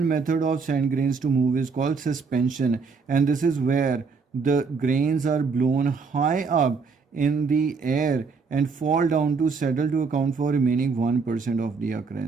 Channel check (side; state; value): left; quieter; 4.9 dB